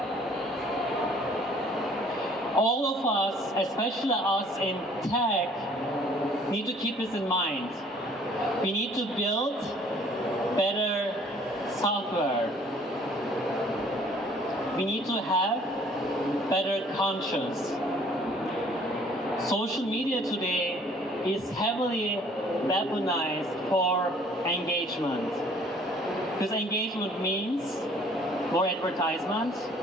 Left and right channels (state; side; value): normal; both; correlation 0.57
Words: All of us, especially us in tech, need to keep this in mind. We need to build better software. We need to have better conscience. Social media today is heavily weaponized for engagement. Because engagement means more advertisement